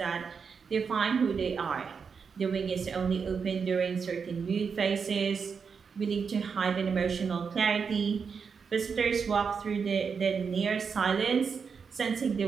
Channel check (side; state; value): left; quieter; 5.9 dB